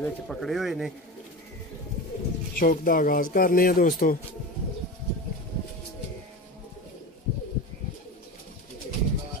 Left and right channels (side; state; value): both; normal; correlation 0.28